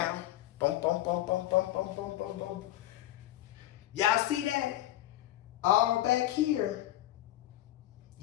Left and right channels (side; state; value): right; quieter; 14.4 dB